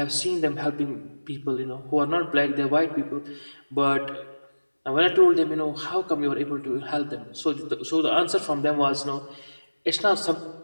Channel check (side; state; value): both; inverted; correlation -1.00